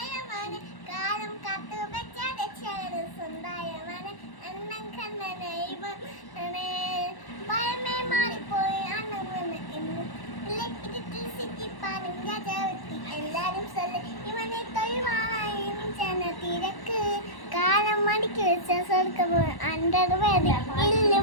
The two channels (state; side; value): late; right; 1.1 ms